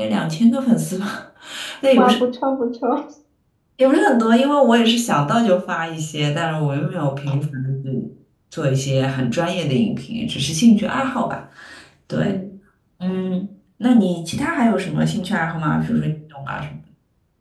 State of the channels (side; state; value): both; identical; correlation 1.00